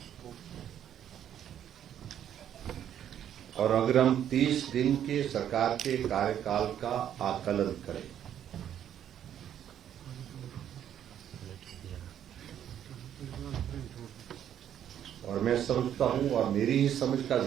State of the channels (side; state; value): left; quieter; 10.0 dB